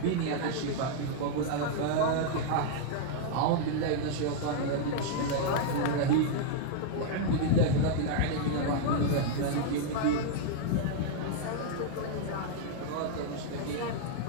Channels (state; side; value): different; both; correlation -0.01